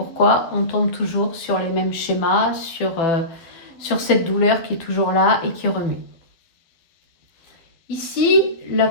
on tombe toujours sur les mêmes schémas, sur sur cette douleur qui est toujours là et qui remue. Ici, la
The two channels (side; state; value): right; late; 12 ms